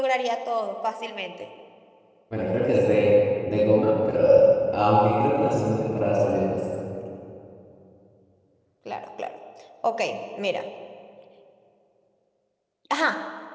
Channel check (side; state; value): both; identical; correlation 1.00